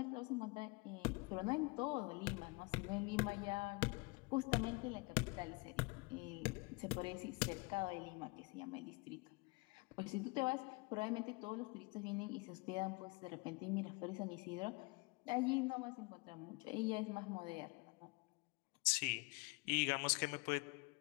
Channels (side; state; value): right; quieter; 28.1 dB